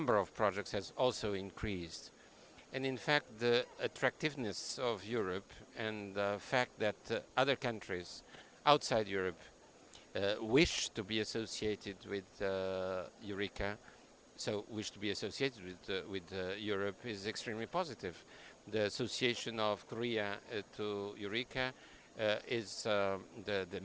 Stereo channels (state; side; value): identical; both; correlation 1.00